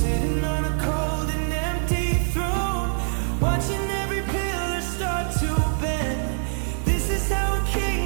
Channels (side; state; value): left; silent; digital silence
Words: on a cold and empty